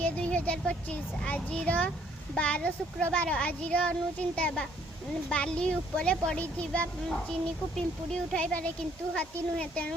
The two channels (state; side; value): normal; both; correlation 0.64